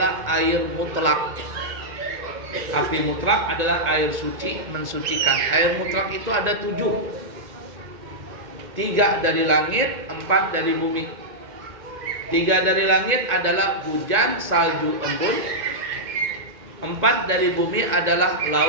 air mutlak. Arti mutlak adalah air suci, mensucikan. Air mutlak itu ada 7. 3 dari langit, 4 dari bumi. 3 dari langit adalah hujan, salju, embun. 4 dari bumi adalah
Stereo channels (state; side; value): late; left; 1.9 ms